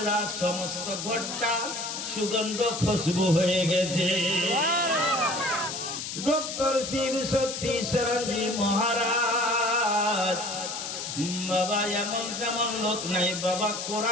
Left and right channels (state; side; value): noise; left; hiss, 6 dB below the sound